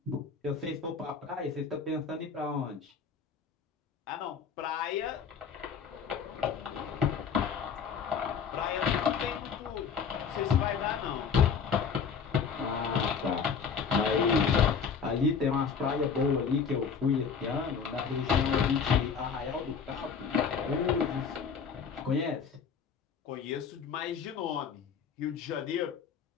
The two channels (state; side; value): quieter; right; 6.3 dB